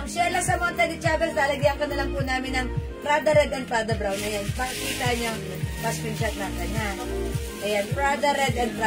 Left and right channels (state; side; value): identical; both; correlation 1.00